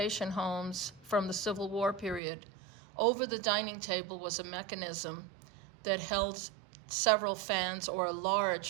homes from the Civil War period, over the dining table was a mechanism that held several fans, or a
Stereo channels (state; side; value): drops out; left; at 2.2 s